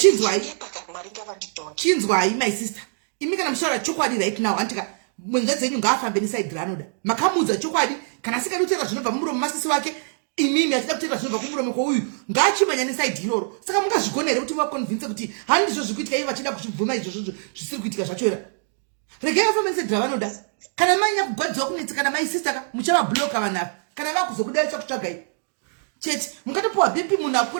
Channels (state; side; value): silent; left; digital silence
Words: Chinzwai my sister. Imi kana mushora chokwadi right now antika mwenza dzenyu ngaafambe neside ranoda. Makamudza chokwadi kana sikadutera zvinobva mumuromo masisi wake imimi asida kutera zvinobva kumuromo kwouyu ngaachimanya neside iroro. Saka mungazvigona here kuti vakonvince kuti handizvo zvikuitika iye vachida kuchibvuma izvozvo zvisiri kuitika zvachora. Regai afambe neside ravanoda. Kana manya kugwadziwa kunetsa kana my sister muchavabloka vanhu kana vakuzokudai chakutsvagai. Cheti mukatopuwa BP munhu